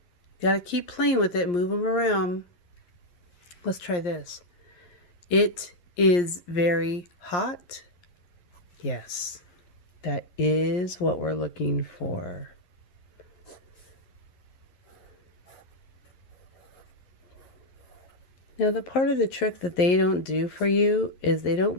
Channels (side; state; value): right; late; 11 ms